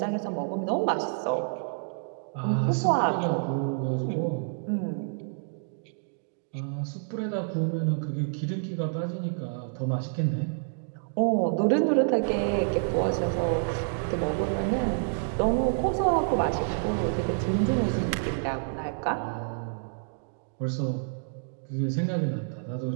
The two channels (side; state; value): left; silent; digital silence